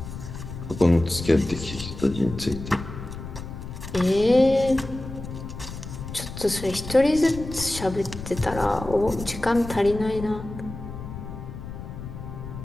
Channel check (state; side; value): noise; left; rumble, 10 dB below the sound